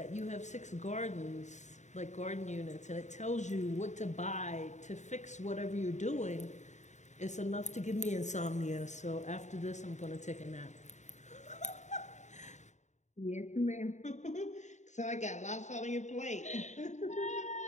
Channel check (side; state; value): right; late; 0.34 ms